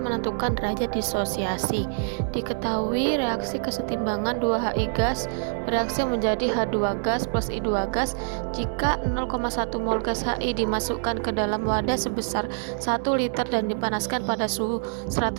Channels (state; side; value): silent; left; digital silence